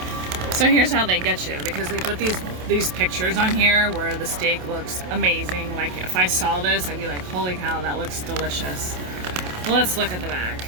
So here's how they get you, because they put these pictures on here where the steak looks amazing. Like if I saw this, I'd be like, holy cow, that looks delicious. Let's look at the back.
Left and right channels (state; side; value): late; left; 27 ms